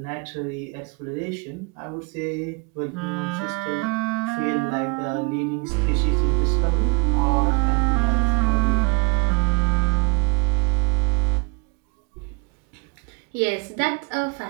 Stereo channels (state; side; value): quieter; left; 30.6 dB